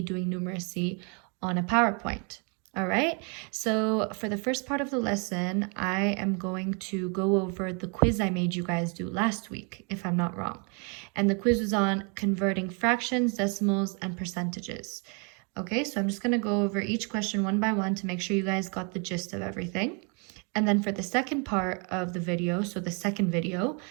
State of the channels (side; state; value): left; quieter; 35.7 dB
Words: numeracy on a PowerPoint. All right, so for the first part of the lesson, I am going to go over the quiz I made you guys do last week, if I'm not wrong. And the quiz was on converting fractions, decimals, and percentages. Okay, so I'm just going to go over each question one by one to make sure you guys got the gist of everything. And then for the second part of the video, so the second video,